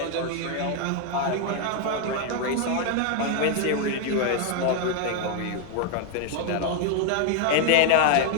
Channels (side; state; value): both; different; correlation 0.00